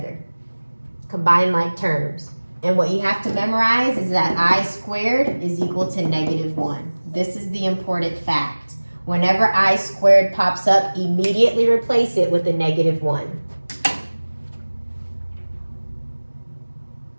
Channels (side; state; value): both; inverted; correlation -1.00